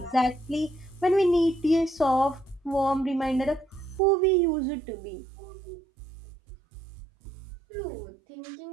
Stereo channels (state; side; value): drops out; left; at 4.0 s